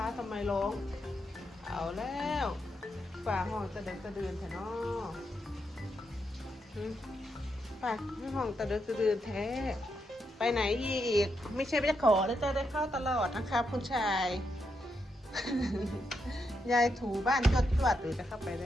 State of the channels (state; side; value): normal; both; correlation 0.82